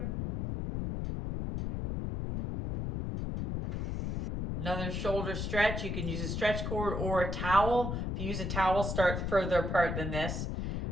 Another shoulder stretch, you can use a stretch cord or a towel. If you use a towel, start further apart than this.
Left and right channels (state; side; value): noise; left; rumble, 2 dB below the sound